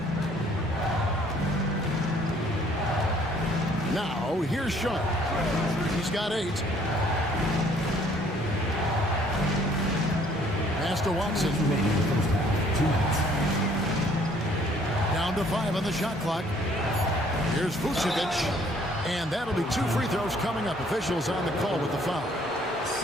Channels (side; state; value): both; normal; correlation 0.61